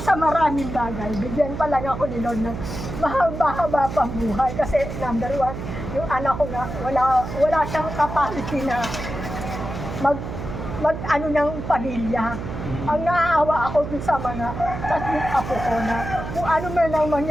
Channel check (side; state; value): right; noise; hum, 7 dB below the sound